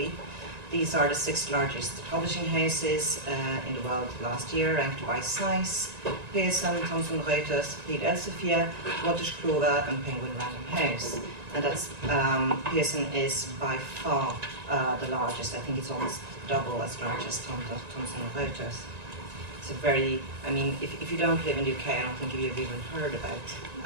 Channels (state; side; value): late; left; 1.9 ms